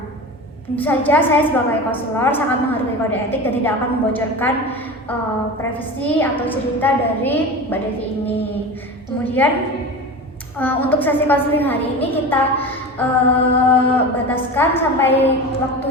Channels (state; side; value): normal; both; correlation 0.30